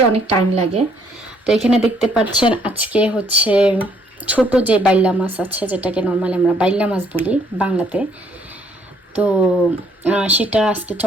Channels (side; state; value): both; normal; correlation 0.66